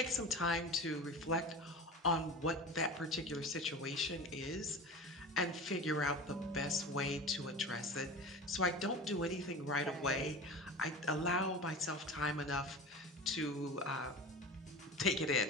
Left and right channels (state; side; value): normal; both; correlation 0.32